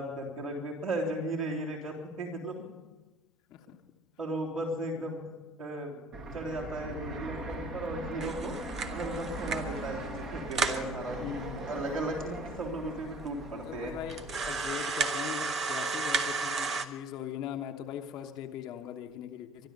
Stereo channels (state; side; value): normal; both; correlation 0.51